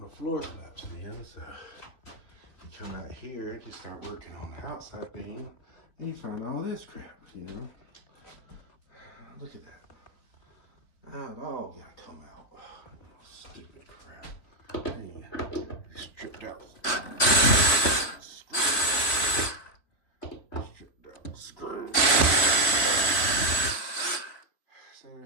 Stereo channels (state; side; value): late; right; 3.6 ms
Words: the floor collapsed in. So you come out here, you start working on the outside beam, and you find all this crap, you know. Look at that. Now it all gotta come out. Oh, stupid crap. Hey, stripped out. Stripped out screw. So